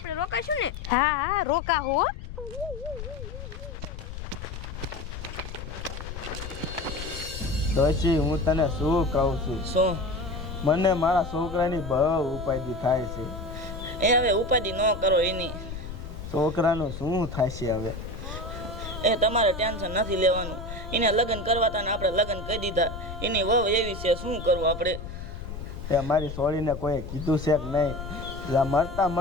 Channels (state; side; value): noise; left; rumble, 9 dB below the sound